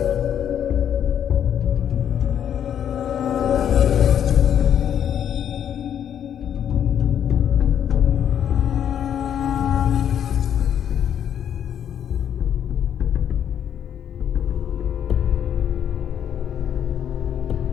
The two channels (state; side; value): quieter; right; 9.3 dB